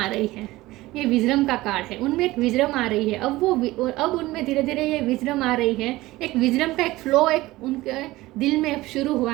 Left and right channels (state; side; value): quieter; left; 18.5 dB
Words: रही है, ये विजडम का कार्ड है, उनमें एक विजडम आ रही है। अब उनमें धीरे धीरे ये विजडम आ रही है, एक विजडम का एक फ्लो एक उनके दिल में शुरू हुआ